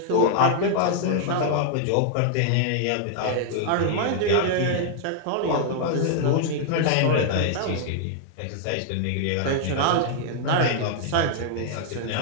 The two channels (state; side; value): different; both; correlation 0.00